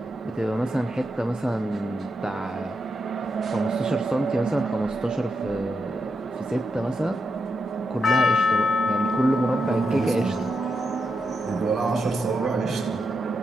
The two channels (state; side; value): normal; both; correlation 0.84